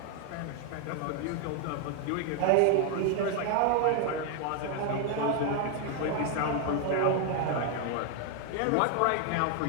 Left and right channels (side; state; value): both; different; correlation 0.00